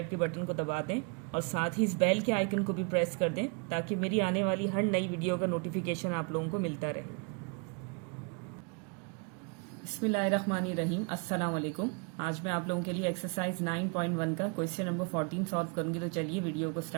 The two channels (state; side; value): quieter; left; 34.4 dB